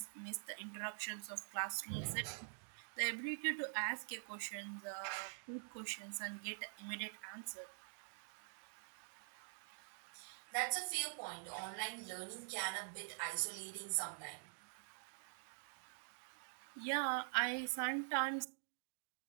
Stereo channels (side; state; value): left; silent; digital silence